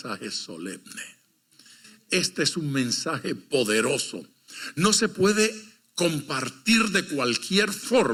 solemne. Este es un mensaje poderoso. No se puede compartir de cualquier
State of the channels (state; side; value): identical; both; correlation 1.00